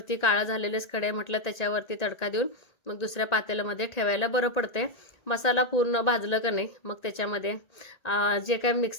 काळा झालेलेच कढई म्हटलं त्याच्यावरती तडका देऊन मग दुसऱ्या पातेल्यामध्ये ठेवायला बरं पडते. मसाला पूर्ण भाजलं का नाही मग त्याच्यामध्ये जे काय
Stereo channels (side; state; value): right; late; 1.9 ms